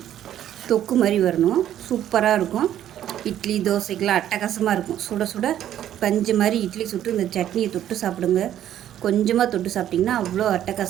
தொக்கு மாதிரி வரணும். சூப்பராக இருக்கும். இட்லி தோசைக்கெலாம் அட்டகாசமாக இருக்கும். சுட சுட பஞ்சு மாதிரி இட்லி சுட்டு இந்த சட்னியை தொட்டு சாப்பிடுங்க. கொஞ்சமாக தொட்டு சாப்பிட்டிங்கன்னா அவ்வளோ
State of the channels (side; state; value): left; quieter; 11.3 dB